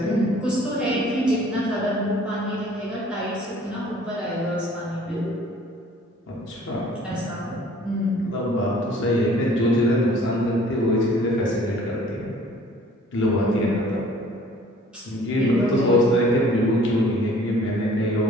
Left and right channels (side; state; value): both; normal; correlation 0.53